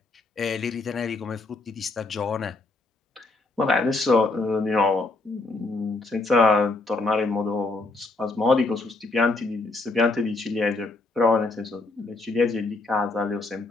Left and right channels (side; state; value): right; quieter; 3.3 dB